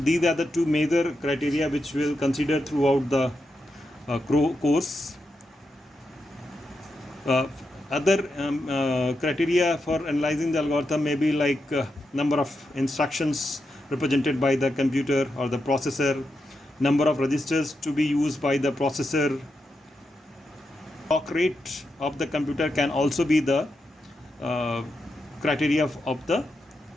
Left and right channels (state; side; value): normal; both; correlation 0.86